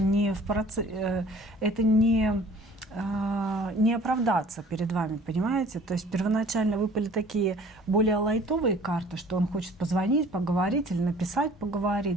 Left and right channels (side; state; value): both; normal; correlation 0.51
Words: в процессе, это не оправдаться перед вами, понимаете? То есть первоначально выпали такие более лайтовые карты, что он хочет позвонить, поговорить или написать,